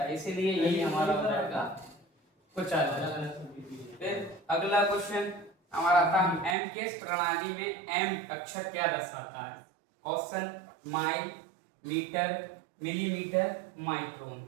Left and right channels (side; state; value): left; drops out; at 6.6 s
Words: है, इसीलिए यही हमारा हो जाएगा कुचालक। फिर अगला क्वेश्चन हमारा आता है एम के प्रणाली में एम अक्षर क्या दर्शाता है। Question mile, metre, millimetre, micron.